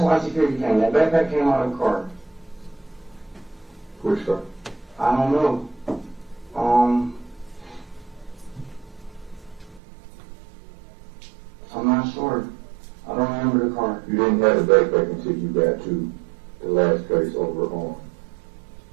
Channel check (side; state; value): left; drops out; at 9.8 s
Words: why security came. That backpack came out of the car. Which car? I don't know. You didn't have a backpack until you got to the last place over on